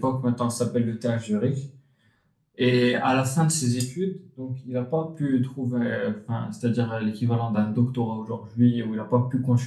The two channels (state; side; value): identical; both; correlation 1.00